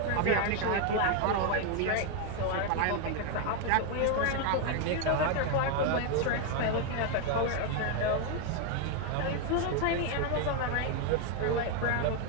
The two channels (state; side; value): different; both; correlation 0.01